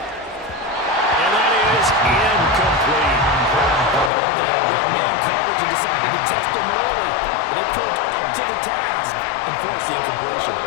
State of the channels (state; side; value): drops out; right; at 4.1 s